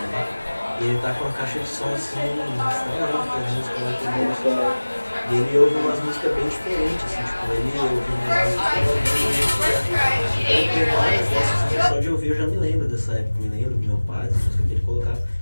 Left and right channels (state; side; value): inverted; both; correlation -1.00